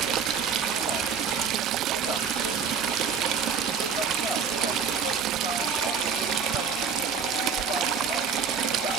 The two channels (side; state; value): left; quieter; 6.4 dB